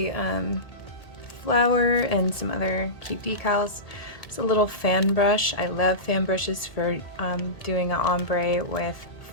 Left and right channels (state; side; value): late; right; 1.8 ms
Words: flower and some other cute decals. It's a little fan brush. I love fan brushes for doing an ombre with